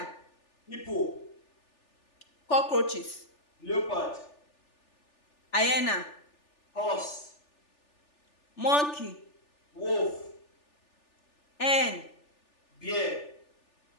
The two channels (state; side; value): late; right; 3.4 ms